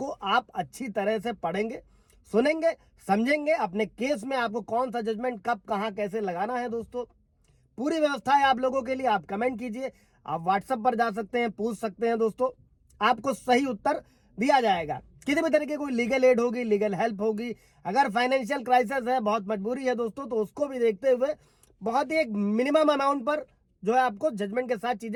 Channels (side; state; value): both; identical; correlation 1.00